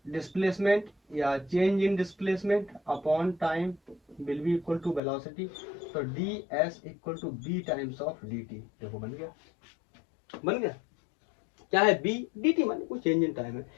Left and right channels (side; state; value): right; drops out; at 5.0 s